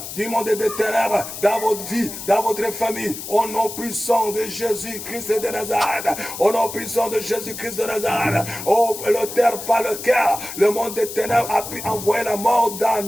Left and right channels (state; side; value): noise; left; hiss, 9 dB below the sound